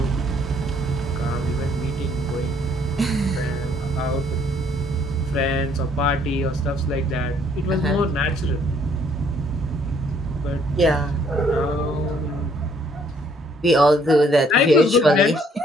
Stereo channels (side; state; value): both; normal; correlation 0.64